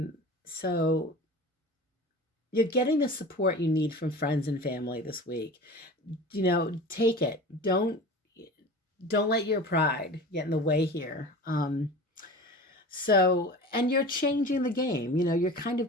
So you're getting the support you need from friends and family this week. Take it. Don't let your pride get in the way here. And you're changing the game, you're kind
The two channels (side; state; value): both; normal; correlation 0.36